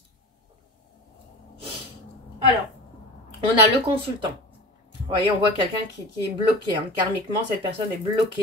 Alors, on a le consultant. Vous voyez, on voit quelqu'un qui est bloqué. Hein. Karmiquement, cette personne est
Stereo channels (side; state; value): both; normal; correlation 0.34